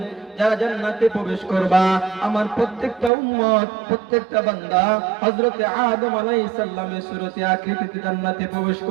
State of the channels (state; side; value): drops out; left; at 3.1 s